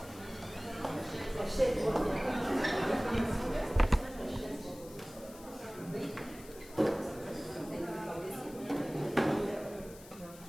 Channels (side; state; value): left; noise; hiss, 19 dB below the sound